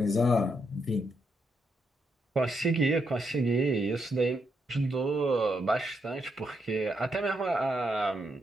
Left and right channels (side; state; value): both; normal; correlation 0.79